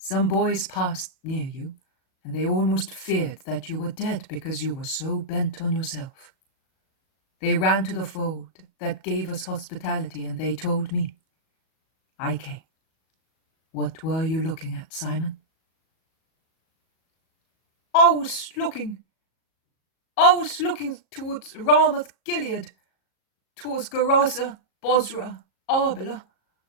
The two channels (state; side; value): late; right; 38 ms